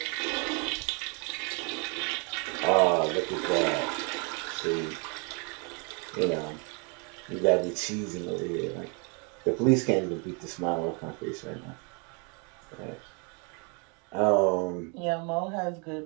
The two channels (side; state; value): left; quieter; 34.7 dB